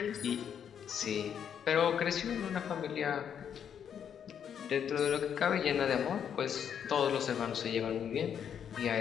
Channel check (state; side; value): quieter; right; 8.3 dB